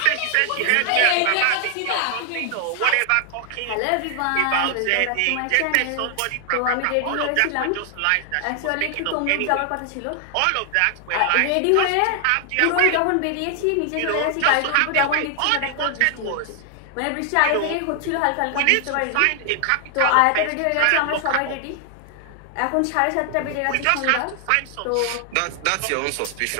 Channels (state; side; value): different; both; correlation 0.00